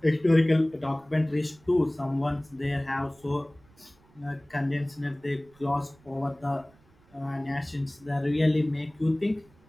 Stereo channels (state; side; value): noise; right; rumble, 29 dB below the sound